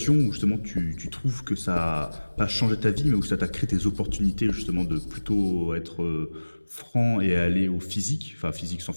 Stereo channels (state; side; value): inverted; both; correlation -1.00